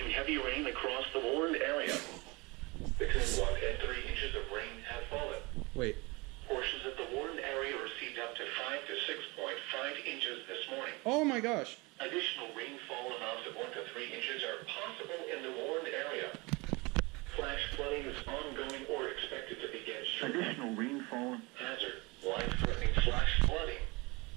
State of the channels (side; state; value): left; quieter; 25.7 dB